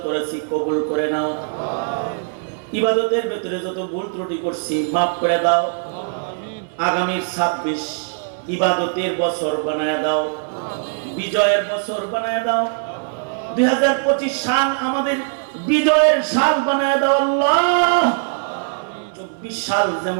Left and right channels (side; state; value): left; silent; 59 dB below the other